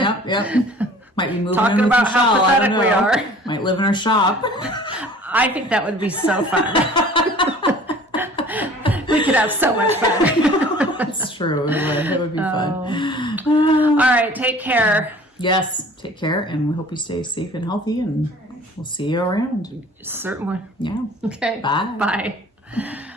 Might be moving talking in with about how Michelle, pathetic we are. Might live in our shop. I think that would be so fun. We could have so much fun. That's true. It would be fun. All right, take care. Yes, take care, and we hope you stay safe and healthy, and we'll see you around. Certainly. Yeah. Okay. Bye. Bye.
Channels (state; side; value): normal; both; correlation 0.48